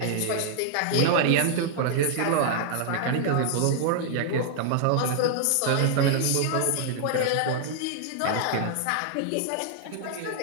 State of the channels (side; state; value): both; different; correlation 0.00